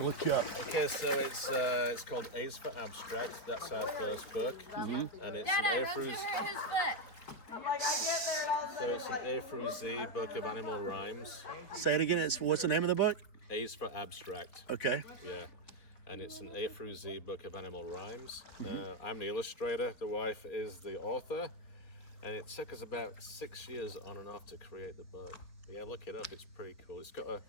look you up. Okay, so it's called A's for Abstract. That's our first book, and it's an A through. His foot. So it's an A through Z book of animal rhymes. Say it again. What's the name of the book? A's for Abstract. Okay. Yeah, and it's an A through Z book of animal rhymes. I'm the illustrator. The wife is the author, and it took us about 6 years on and off to create the book. But yeah, look it up. It's pretty cool. It's got a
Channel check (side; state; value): right; late; 4.6 ms